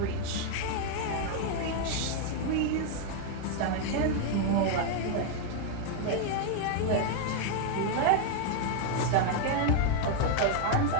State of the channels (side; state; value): both; different; correlation 0.00